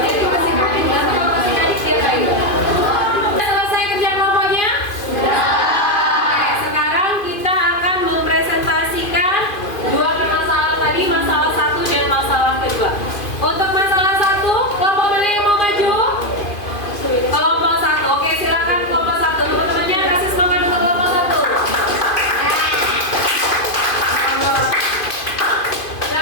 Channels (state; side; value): late; right; 2.5 ms